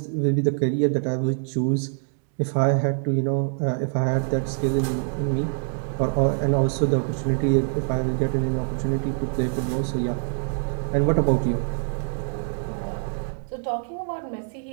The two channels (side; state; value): left; silent; digital silence